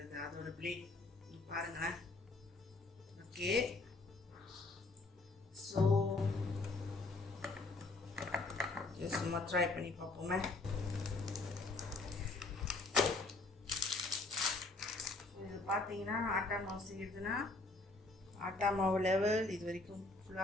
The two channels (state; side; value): quieter; right; 3.1 dB